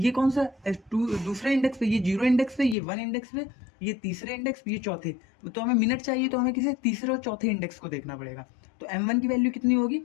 कौन सा दूसरे इंडेक्स पे, ये 0 इंडेक्स पे, ये 1 इंडेक्स पे, ये तीसरे इंडेक्स पे, ये चौथे, तो हमें मिनट चाहिए तो हमें किसी तीसरे और चौथे इंडेक्स को देखना पड़ेगा। तो m1 की वैल्यू कितनी होगी,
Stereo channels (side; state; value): right; drops out; at 2.8 s